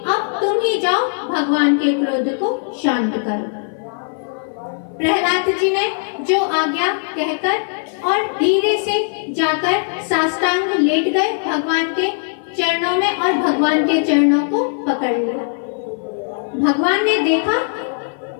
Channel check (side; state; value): right; silent; 57 dB below the other